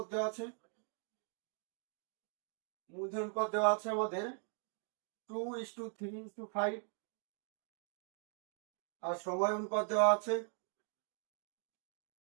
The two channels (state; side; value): silent; left; 51 dB below the other